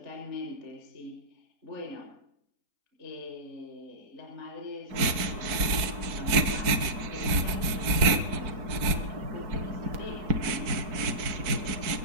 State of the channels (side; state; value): left; late; 4.5 ms